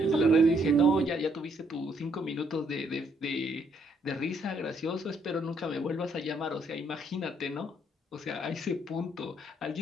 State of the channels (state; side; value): normal; both; correlation 0.70